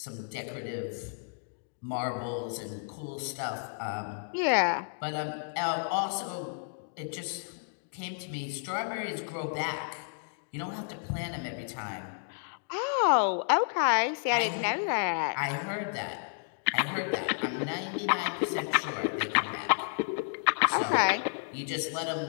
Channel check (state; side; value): silent; right; digital silence